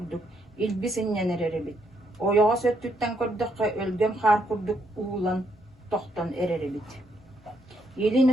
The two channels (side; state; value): both; normal; correlation 0.75